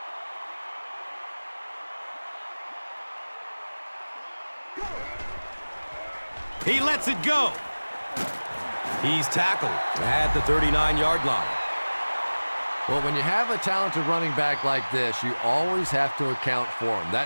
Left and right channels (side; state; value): both; inverted; correlation -1.00